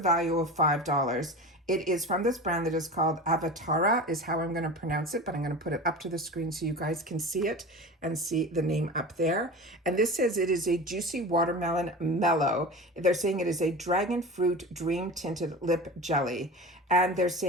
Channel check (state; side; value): normal; both; correlation 0.31